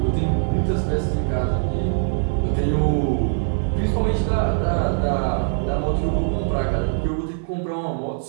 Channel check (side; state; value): left; silent; 57 dB below the other